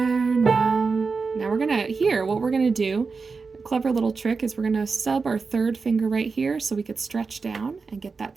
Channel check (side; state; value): left; quieter; 4.6 dB